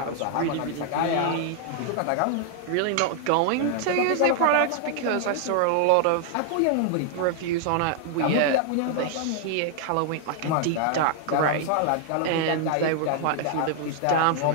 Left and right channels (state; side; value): different; both; correlation 0.00